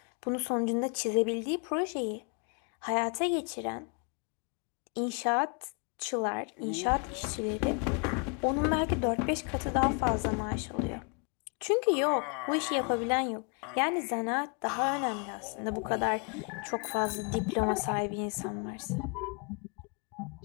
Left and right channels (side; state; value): right; quieter; 37.5 dB